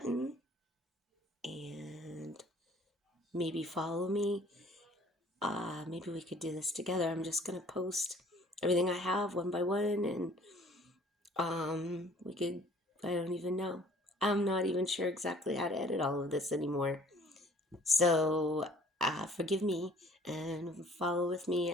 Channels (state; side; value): normal; both; correlation 0.55